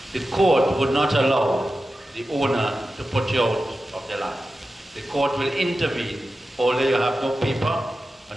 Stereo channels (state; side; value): normal; both; correlation 0.93